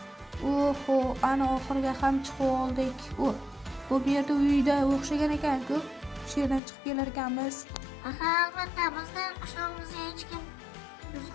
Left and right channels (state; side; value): drops out; right; at 6.6 s